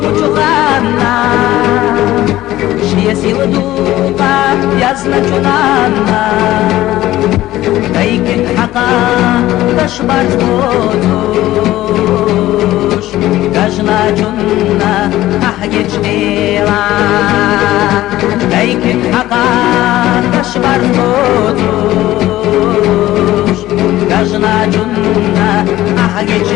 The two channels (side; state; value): right; quieter; 15.4 dB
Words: шия сила духа язначунана, кайкин хака ташбарц бодуш, кажначунна ахгеч дела, кайкин хака ташбарц бодуш, кажначунна ахгеч